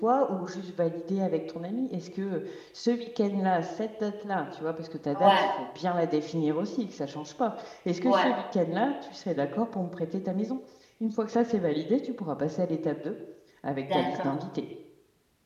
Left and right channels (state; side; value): identical; both; correlation 1.00